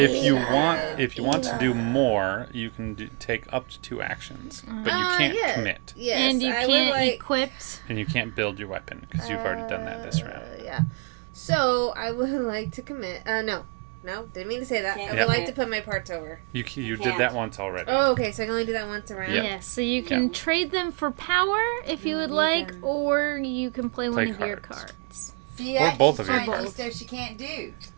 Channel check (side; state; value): left; quieter; 32.2 dB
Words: what you she want, did. if you want to do more, you can take up to 2 actions, but you can't yeah. commit, Yes, And you I would can't like, equip. and you can't build your weapon because you've already done that this round. Yeah. So I would like to commit. No, didn't mean to say that. I Can't would Yeah. like to put my parts over. You did can't. that once already. Oh, okay. So I can only do that once around. Yep. Yes, so you can trade them for power if you would like, or you can play one of your cards. cards. See, Or that both she's of your trying to do parts. stuff she can't do.